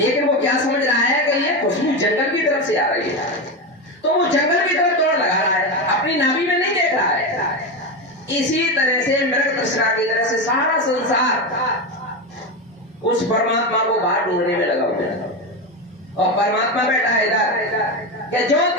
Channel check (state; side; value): normal; both; correlation 0.16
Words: वो क्या समझ रहा है कि ये खुशबू जंगल की तरफ से आ रही है, तो वो जंगल की तरफ दौड़ लगा रहा है, अपनी नाभि में नहीं देख रहा है। इसी तरह से मृग तृष्णा की तरह से सारा संसार उस परमात्मा को बाहर ढूंढने में लगा हुआ है। और परमात्मा बैठा है इधर कि जो